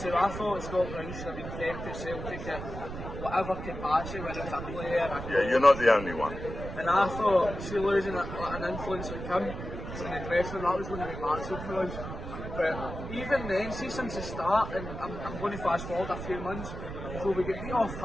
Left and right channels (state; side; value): noise; right; rumble, 8 dB below the sound